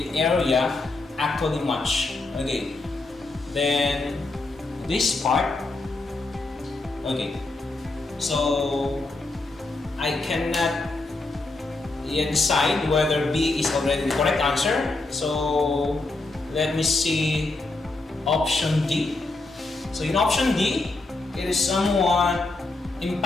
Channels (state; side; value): quieter; right; 3.2 dB